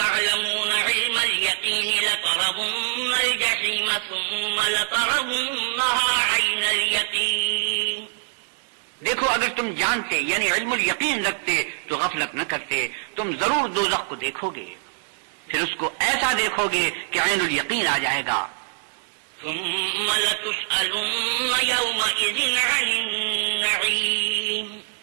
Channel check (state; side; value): silent; left; 63 dB below the other